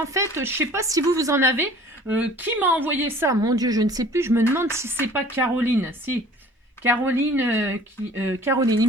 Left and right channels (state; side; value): normal; both; correlation 0.49